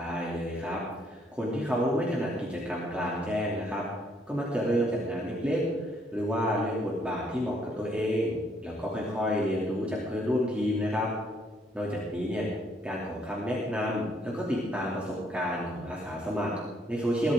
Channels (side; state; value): both; normal; correlation 0.68